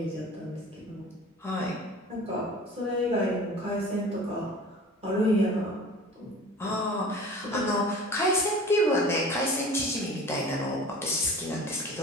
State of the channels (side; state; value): both; normal; correlation 0.41